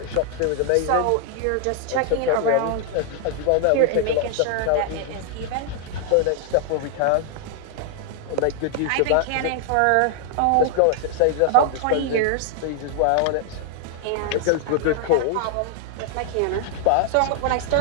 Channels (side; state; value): both; different; correlation 0.00